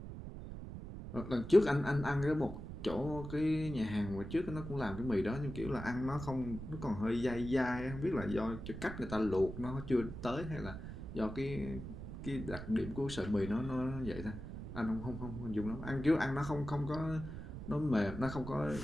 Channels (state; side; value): noise; right; rumble, 9 dB below the sound